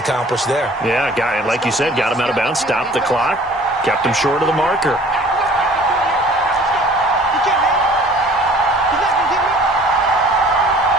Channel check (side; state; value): both; normal; correlation 0.50